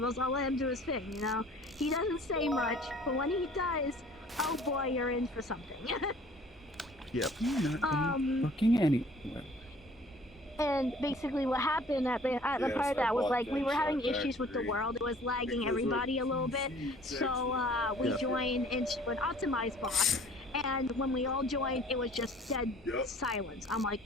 I'll let him do his thing, you know? He doesn't say much, but when he does, oh boy, you're in for something. Yep. You're not fucking anywhere. And basically what happened at the part of that was like we were having issues with the world. It was lagging everybody a little bit. So we joined into an optimized box. And when we all joined, it was just dead silence. I'm like,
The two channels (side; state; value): both; normal; correlation 0.52